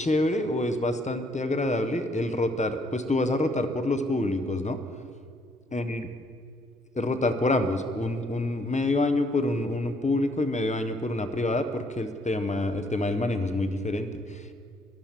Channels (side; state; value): both; normal; correlation 0.68